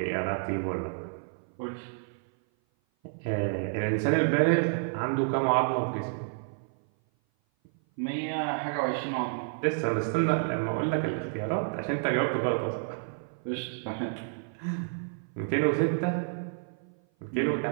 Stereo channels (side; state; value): left; silent; 56 dB below the other